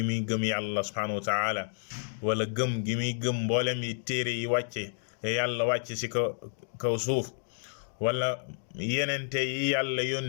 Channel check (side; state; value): right; silent; digital silence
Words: muy gëm yàlla subhanahu wa taala wala gëm gi muy gëm mboolem yi téere yi wàcce yàlla wàcce si kaw suuf wala yenente yi yàlla